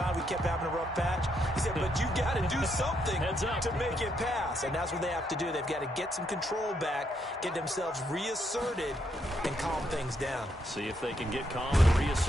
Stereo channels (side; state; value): both; normal; correlation 0.76